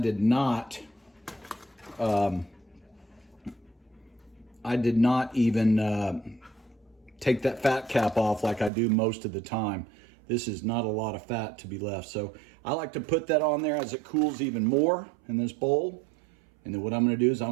not even take that fat cap off like I do most of the time. This is not a lot of fat to be left. So I like to put that on there as it cools even more in this bowl. And then what I'm gonna do is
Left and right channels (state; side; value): drops out; left; at 8.7 s